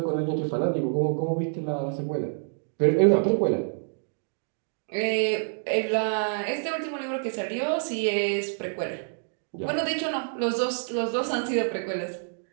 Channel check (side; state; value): left; silent; digital silence